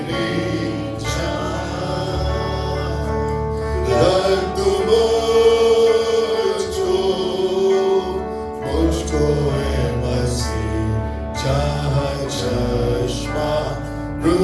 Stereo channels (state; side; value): identical; both; correlation 1.00